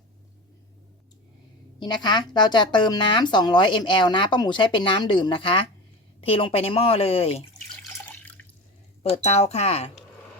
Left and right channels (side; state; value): both; normal; correlation 0.28